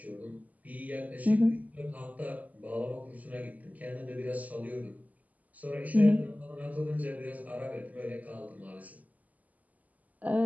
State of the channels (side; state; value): left; late; 0.077 ms